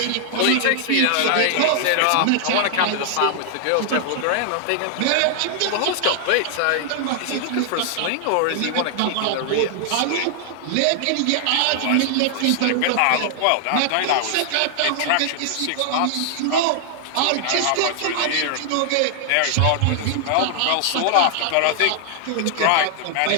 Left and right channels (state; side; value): different; both; correlation 0.00